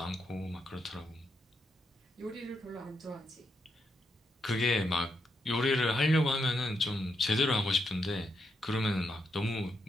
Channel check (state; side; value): normal; both; correlation 0.81